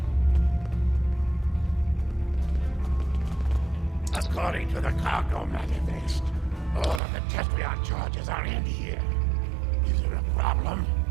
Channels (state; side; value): drops out; left; at 7.0 s